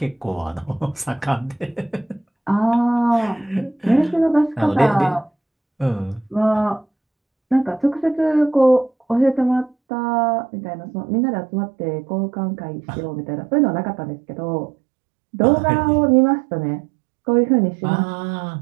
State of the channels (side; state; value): left; drops out; at 9.8 s